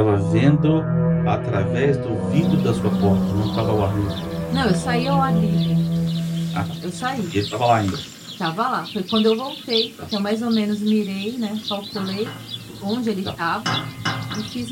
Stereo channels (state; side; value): identical; both; correlation 1.00